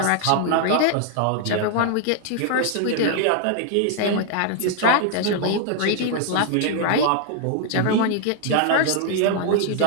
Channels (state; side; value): different; both; correlation 0.00